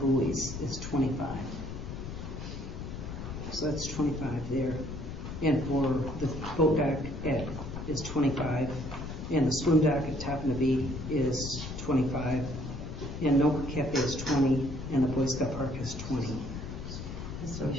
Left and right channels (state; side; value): noise; left; rumble, 7 dB below the sound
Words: buoys is 25. So that's 25 there. And for the boat dock is 25. And the swim dock at Tappan Bee is 25. And Noka Cafe is 20. And the Boy Scout Park is 20. So